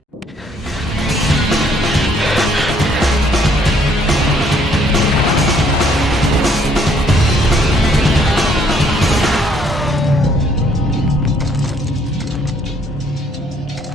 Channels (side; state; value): both; normal; correlation 0.65